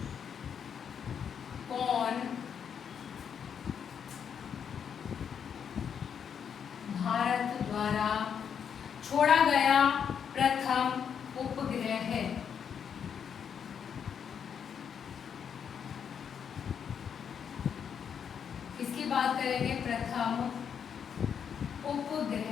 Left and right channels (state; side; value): quieter; right; 7.6 dB